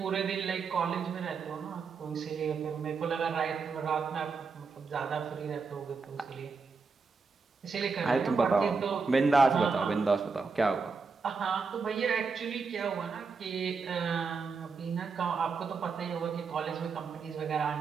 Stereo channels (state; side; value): quieter; left; 4.8 dB